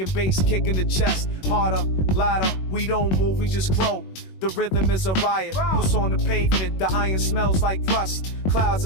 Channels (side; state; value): right; late; 21 ms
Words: bass kicking the chest. Harder, louder, we don't move, we just grow. The rhythm is a riot. What's on the pavement? The iron smells like rust. Clouds